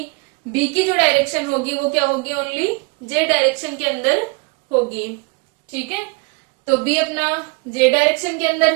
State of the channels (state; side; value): quieter; left; 29.6 dB